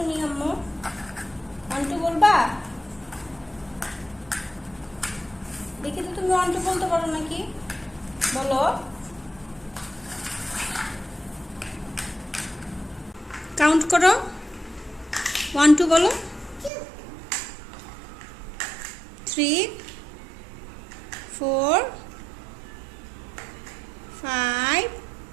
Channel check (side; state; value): left; drops out; at 16.7 s